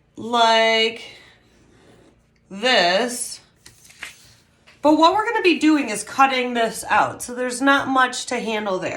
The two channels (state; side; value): identical; both; correlation 1.00